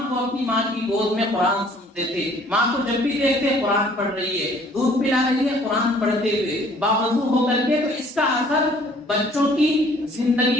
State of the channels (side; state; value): both; normal; correlation 0.57